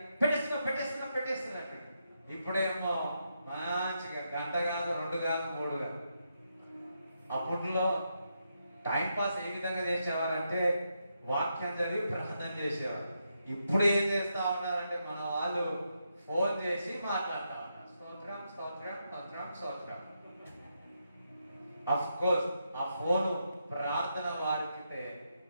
పెట్టేస్తున్నట్టు. ఇప్పుడేమో మంచిగా గంట కాదు, 2 కాదు, 3 కాదు. అప్పట్లో టైంపాస్ ఏ విధంగా చేసేవారంటే వాక్యం చదివి ప్రార్థన చేసేవారు. ఇప్పుడు ఏం చేస్తా ఉన్నారంటే మన వాళ్ళు ఫోన్ చేసి మాట్లాడుతూ ఉన్నారు. స్తోత్రం స్తోత్రం స్తోత్రం స్తోత్రం. అఫ్ కోర్స్ ఆ ఫోను ప్రార్థన వారికితే,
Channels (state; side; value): inverted; both; correlation -0.82